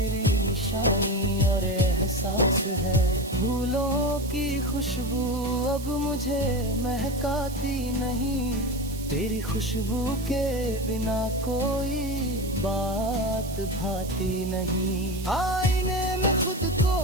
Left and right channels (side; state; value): right; noise; hiss, 15 dB below the sound